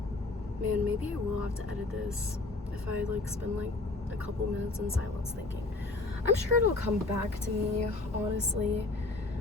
Man, maybe I will have to edit this if I like spend like a couple minutes in silence thinking. I'm sure it'll come back to me, honestly.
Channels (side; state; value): right; quieter; 3.3 dB